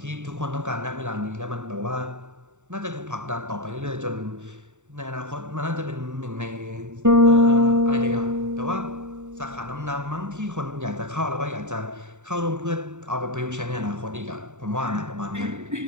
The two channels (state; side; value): late; left; 0.84 ms